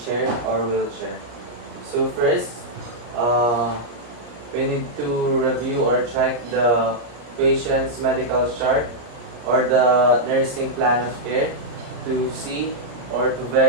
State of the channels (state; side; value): late; left; 33 ms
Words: chair or wheelchair. So first, uh, we need to review or check the patient's medical chart or the nursing plan of care to see or to